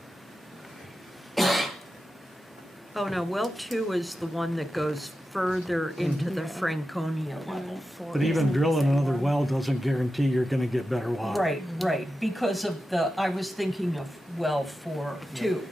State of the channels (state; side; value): normal; both; correlation 0.91